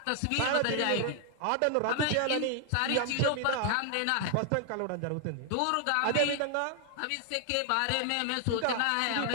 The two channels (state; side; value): different; both; correlation 0.00